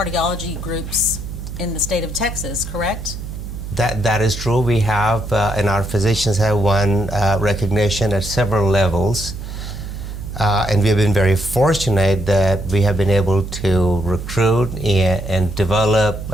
groups in the state of Texas, correct? That is true. We have, and our physicians have won recognition at several levels. And we have been very fortunate that we have been able to recruit and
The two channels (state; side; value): noise; right; hum, 9 dB below the sound